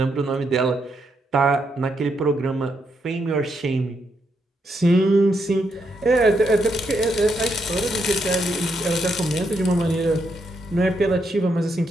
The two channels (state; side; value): normal; both; correlation 0.79